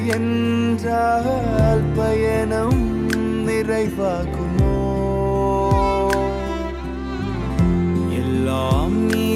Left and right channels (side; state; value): both; identical; correlation 1.00